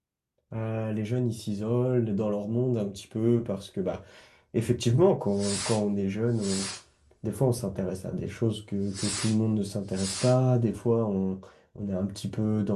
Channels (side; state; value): both; identical; correlation 1.00